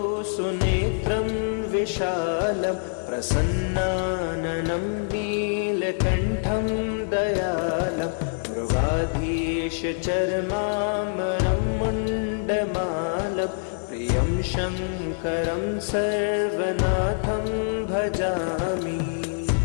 सुनेत्रं विशालं प्रसन्नाननं नीलकण्ठं दयालं मृगाधीशचर्माम्बरं मुण्डमालं प्रियं शङ्करं सर्वनाथं भजामि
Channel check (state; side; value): silent; right; digital silence